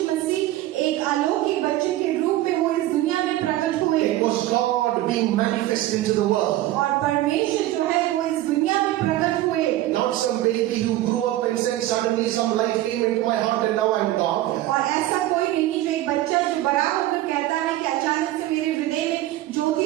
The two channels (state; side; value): quieter; left; 15.3 dB